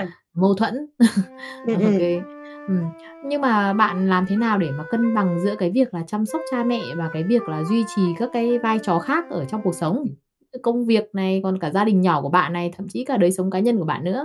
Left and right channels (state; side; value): identical; both; correlation 1.00